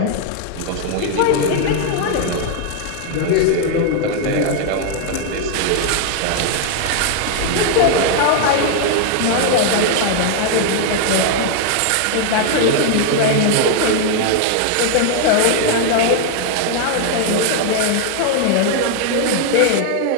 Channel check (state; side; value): different; both; correlation 0.00